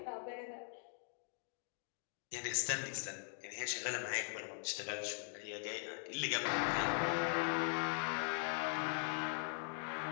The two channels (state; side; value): silent; right; 50 dB below the other